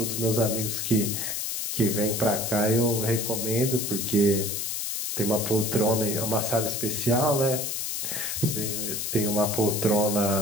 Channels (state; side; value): noise; left; hiss, 2 dB below the sound